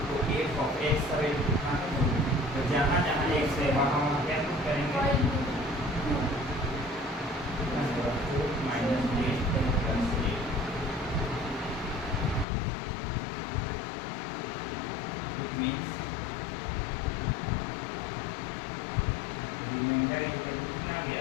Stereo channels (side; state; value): right; drops out; at 12.5 s